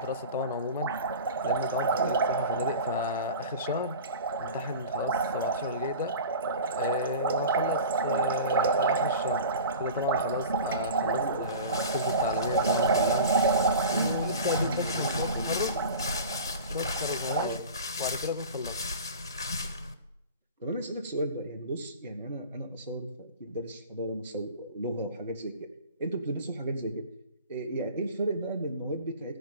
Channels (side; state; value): both; inverted; correlation -0.36